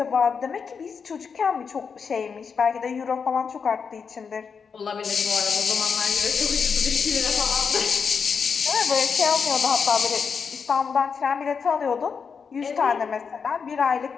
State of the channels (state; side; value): quieter; right; 5.9 dB